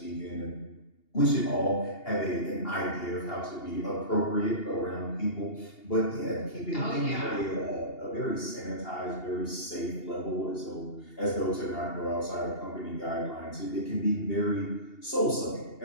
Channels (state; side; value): late; right; 2.8 ms